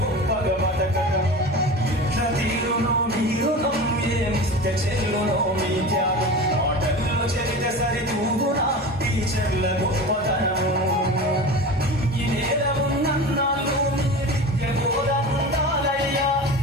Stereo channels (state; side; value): normal; both; correlation 0.31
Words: గొప్పగా బతకటం ఎట్ల తీరునో మీరునం ఏమిస్తే చెల్లునో మీ త్యాగం ఆటల్లో చెరితే సరితూగునా టీచర్ల గొప్పతనము ఈ నేల ఉన్నన్నాళ్ళు మీ విద్య బోధనుండాలయ్యా